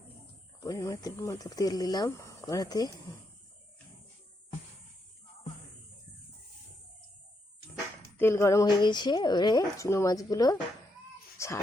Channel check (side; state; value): both; normal; correlation 0.80